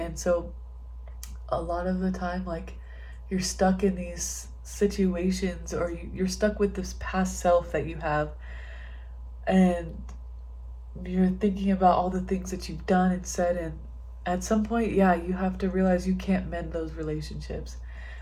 so a lot of the time, like, you're stuck in these situations, or you're stuck with this past self that you have, and you're thinking about all the things that you've done and said, and at some point, yeah, you have to realize you can't mend those relationships.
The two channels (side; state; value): both; identical; correlation 1.00